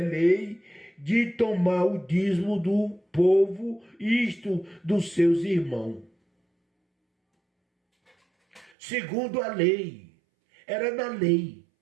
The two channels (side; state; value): left; drops out; at 8.7 s